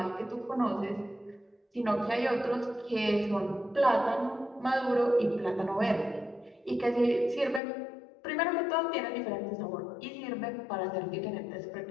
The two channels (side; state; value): right; drops out; at 7.6 s